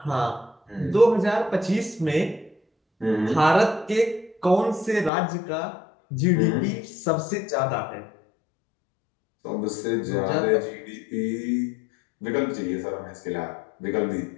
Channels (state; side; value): drops out; right; at 5.1 s